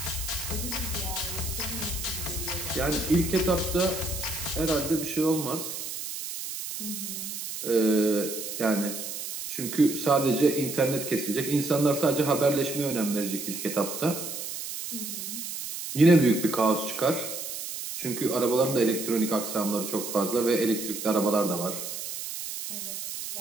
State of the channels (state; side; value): noise; right; hiss, 7 dB below the sound